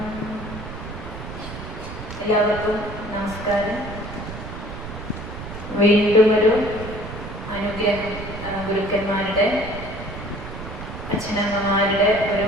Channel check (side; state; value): right; noise; rumble, 10 dB below the sound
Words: എല്ലാവർക്കും നമസ്കാരം. വീണ്ടും ഒരു അനുഗ്രഹം, ഗുരുക്കന്മാരുടെ അച്ഛനമ്മമാരുടെ